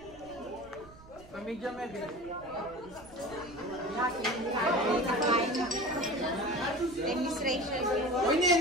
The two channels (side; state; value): right; noise; rumble, 21 dB below the sound